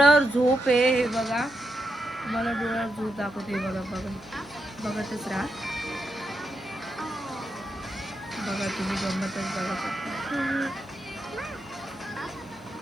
झोप आहे. हे बघा तुम्हाला डोळ्यावर झोप दाखवते. बघा बघतच राहा. बघा तुम्ही गंमतच बघा.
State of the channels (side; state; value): right; noise; hum, 25 dB below the sound